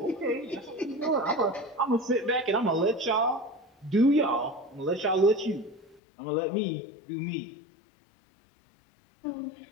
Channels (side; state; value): right; drops out; at 6.0 s